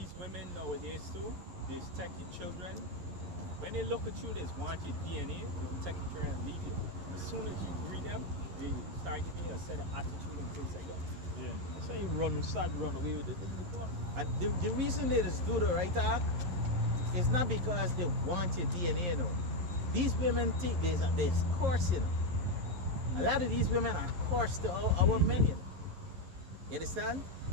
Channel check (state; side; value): late; left; 11 ms